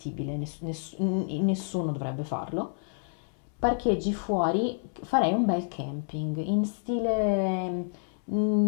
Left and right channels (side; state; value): right; silent; 59 dB below the other